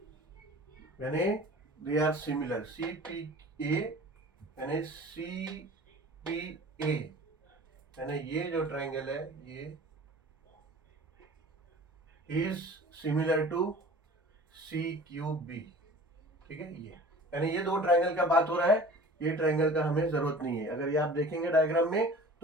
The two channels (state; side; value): normal; both; correlation 0.43